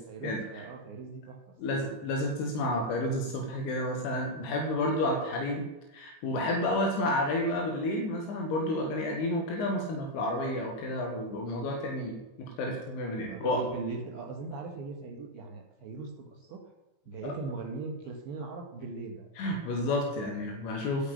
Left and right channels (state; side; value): late; right; 19 ms